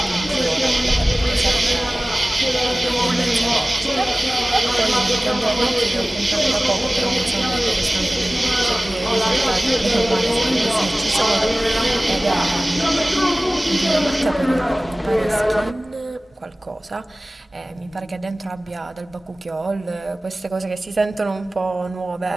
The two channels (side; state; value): both; normal; correlation 0.98